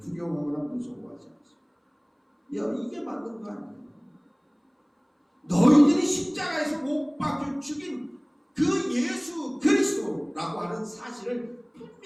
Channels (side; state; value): both; identical; correlation 1.00